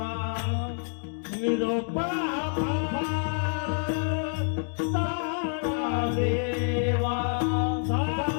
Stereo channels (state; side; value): silent; right; 60 dB below the other